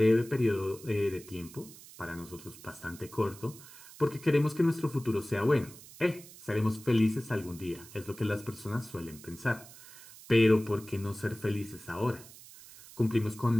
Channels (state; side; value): noise; right; hiss, 19 dB below the sound